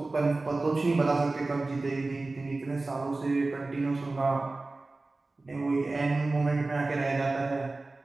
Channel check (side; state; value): left; quieter; 3.3 dB